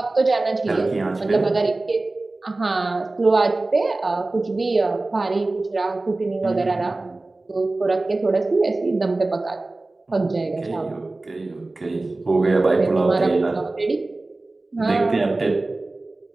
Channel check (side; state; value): left; quieter; 3.1 dB